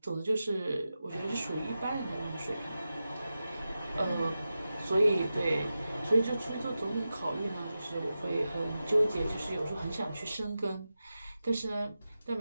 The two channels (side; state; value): both; inverted; correlation -0.92